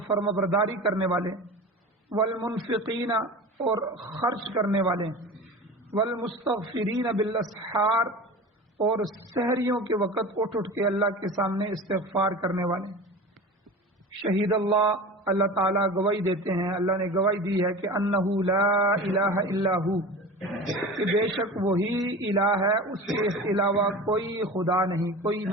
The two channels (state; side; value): normal; both; correlation 0.33